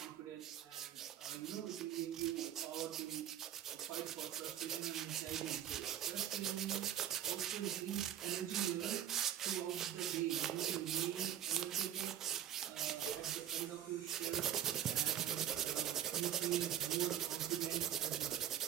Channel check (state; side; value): quieter; left; 10.7 dB